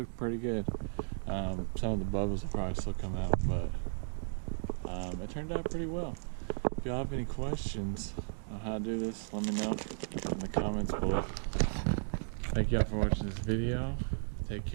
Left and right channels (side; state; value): left; silent; digital silence